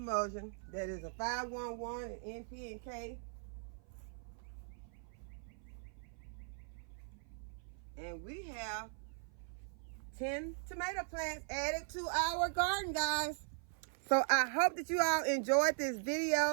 that is a 511 in NP and K. And we have 10 tomato plants added to our garden, guys. So I hope that you all enjoyed this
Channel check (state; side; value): silent; left; 51 dB below the other